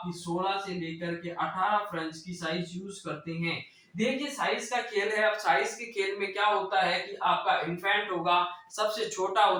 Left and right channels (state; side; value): identical; both; correlation 1.00